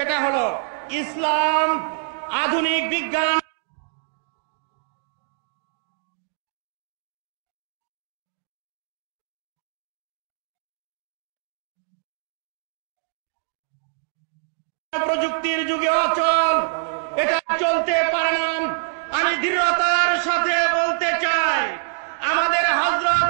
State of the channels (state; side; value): silent; left; digital silence